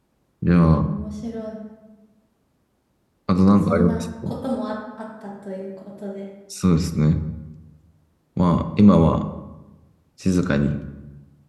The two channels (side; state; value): both; identical; correlation 1.00